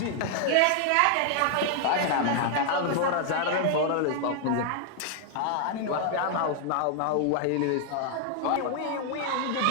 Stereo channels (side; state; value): both; different; correlation 0.00